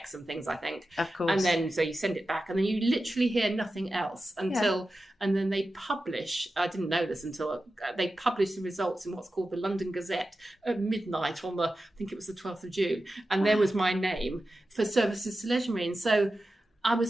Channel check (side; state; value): both; normal; correlation 0.93